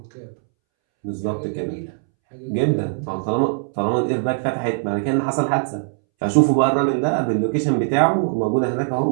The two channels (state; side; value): silent; left; 64 dB below the other